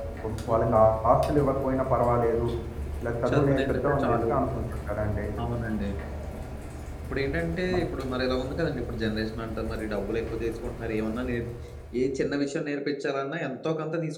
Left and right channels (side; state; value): both; identical; correlation 1.00